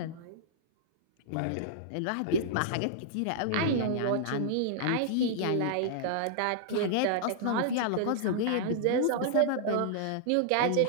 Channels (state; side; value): different; both; correlation -0.01